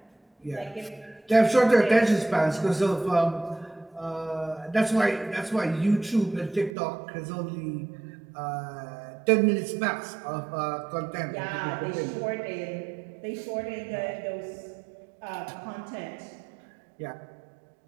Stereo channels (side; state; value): left; drops out; at 6.7 s